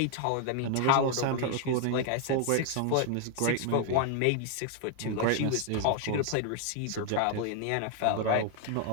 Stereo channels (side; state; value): both; different; correlation 0.00